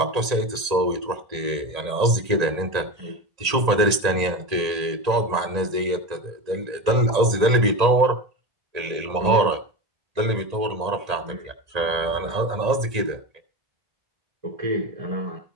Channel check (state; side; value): late; left; 1.8 ms